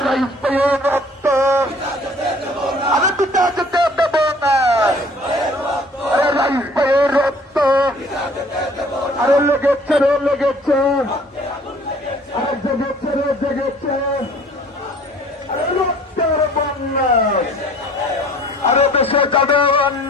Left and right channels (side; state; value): both; normal; correlation 0.52